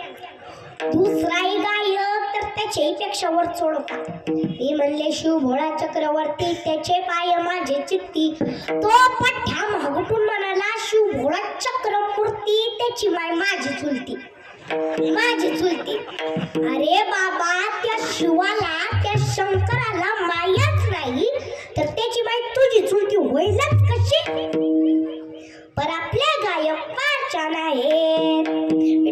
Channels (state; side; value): identical; both; correlation 1.00